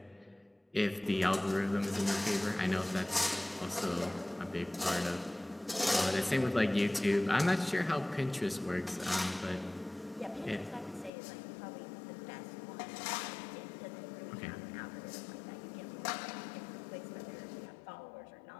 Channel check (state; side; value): drops out; right; at 11.1 s